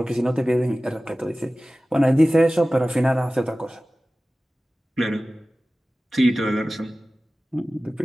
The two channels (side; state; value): both; normal; correlation 0.97